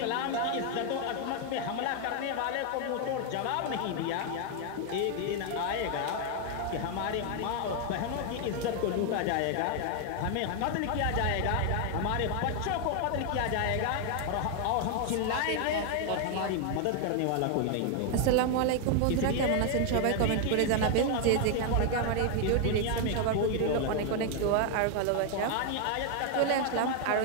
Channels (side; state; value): both; different; correlation 0.00